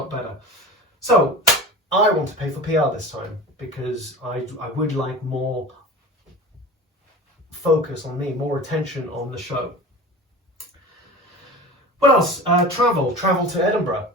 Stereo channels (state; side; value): normal; both; correlation 0.35